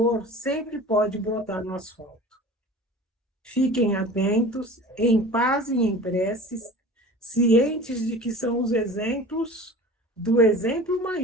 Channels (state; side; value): normal; both; correlation 0.40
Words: sempre pode brotar no asfalto. Fiquem atentos, em paz e em preces, cientes de que são os exemplos do exemplo